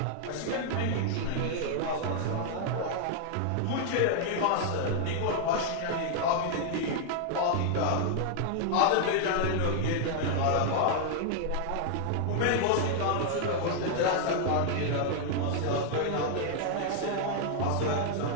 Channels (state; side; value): different; both; correlation 0.00